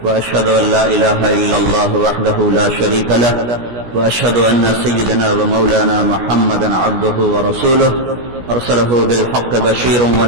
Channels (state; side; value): late; left; 17 ms